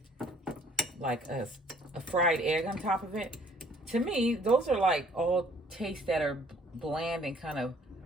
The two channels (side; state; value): both; normal; correlation 0.59